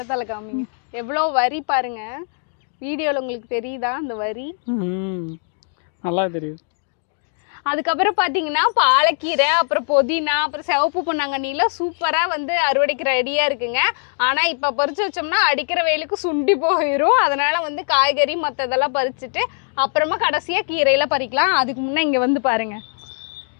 காமிங்க, எவ்வளோ வரி பாருங்க. வீடியோவில் உங்களுக்கு தெரியுதா அந்த வரி? நல்லா தெரியுது. அதுக்கப்புறம் பார்த்தீங்கன்னா பாலக்கீரை, அப்புறம் புதினா, அப்புறம் சிவப்பு பொன்னாங்கண்ணிலாம் சூப்பராக அறுவடைக்கு ரெடியாக இருக்குங்க. ஆனால் இப்போ பறித்து வச்சோம்னா அடிக்கிற வெயிலுக்கு சுண்டி போயிடும். அதனால் காய்கறி மற்றதெல்லாம் பறிச்சுட்டு அப்புறமா கடைசியாக கீரையில் பறிக்கலாம். அதுக்கு முன்னே இங்கே பாருங்கள்,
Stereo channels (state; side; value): silent; right; 59 dB below the other